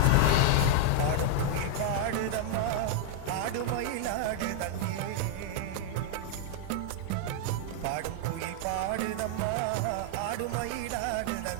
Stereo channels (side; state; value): both; different; correlation 0.00